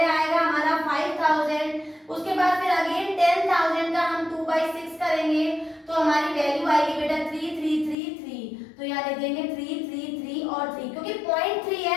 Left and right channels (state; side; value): drops out; right; at 8.0 s